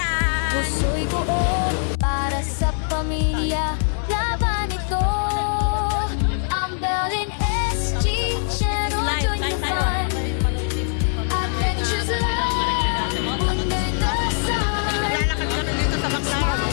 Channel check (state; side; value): silent; right; 64 dB below the other